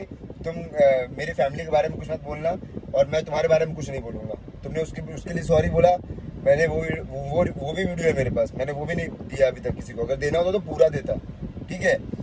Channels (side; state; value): both; identical; correlation 1.00